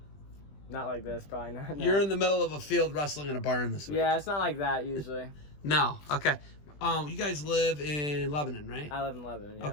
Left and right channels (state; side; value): late; right; 20 ms